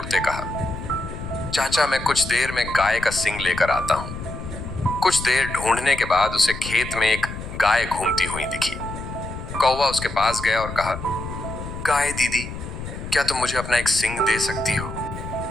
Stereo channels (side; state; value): left; noise; rumble, 9 dB below the sound